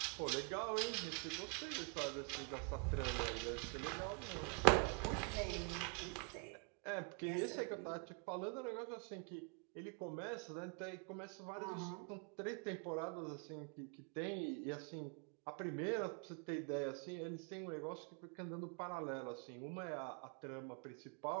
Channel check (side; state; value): left; quieter; 34.3 dB